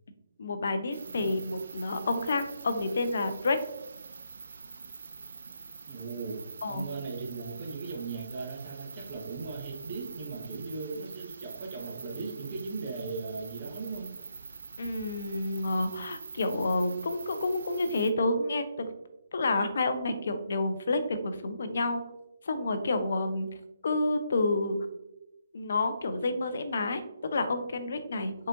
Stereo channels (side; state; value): both; inverted; correlation -0.78